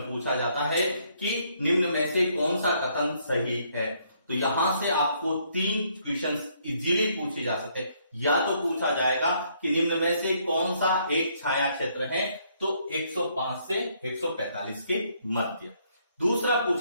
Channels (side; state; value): both; inverted; correlation -0.69